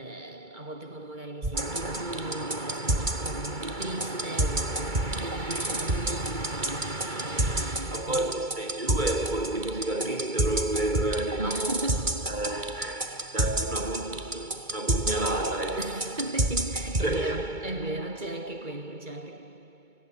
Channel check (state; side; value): late; left; 2.2 ms